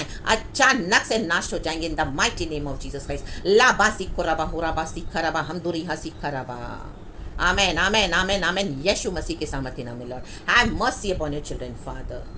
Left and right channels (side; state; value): both; identical; correlation 1.00